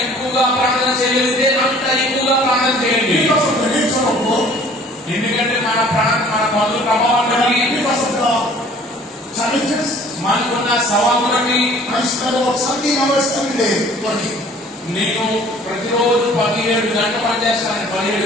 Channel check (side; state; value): both; normal; correlation 0.52